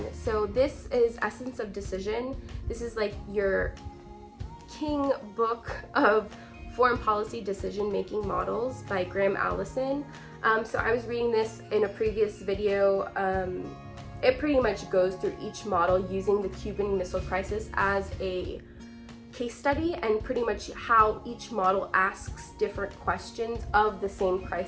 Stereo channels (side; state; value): both; identical; correlation 1.00